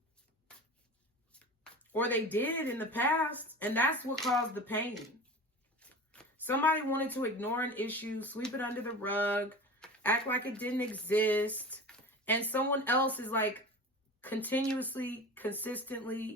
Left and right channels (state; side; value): normal; both; correlation 0.33